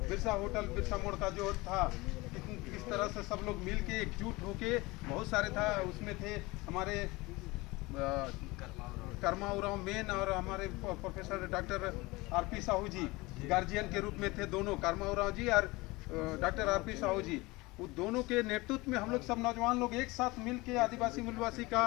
बिरसा होटल, बिरसा मोड़ का जो था, किस तरह से सब लोग मिल के एकजुट होके, बहुत सारे था उसमें थे हमारे कर्मा उराव मेन और हमारे प्रोफेसर डॉक्टर आरपी साहू जी गार्जियन के रूप में थे। दोनों कर्मा उराव जी और डॉक्टर आरपी साहू जी, वो दोनों के नेतृत्व में हम लोग सब नौजवान लोग एक साथ मिल के आदिवासी मूलवासी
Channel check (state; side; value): quieter; right; 22.4 dB